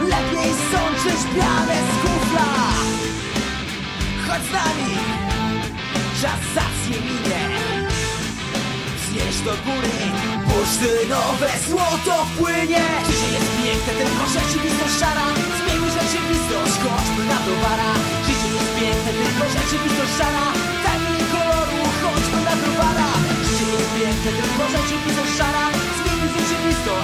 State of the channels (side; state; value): both; identical; correlation 1.00